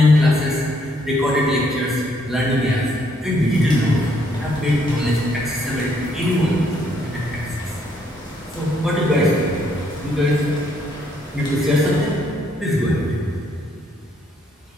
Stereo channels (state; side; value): normal; both; correlation 0.70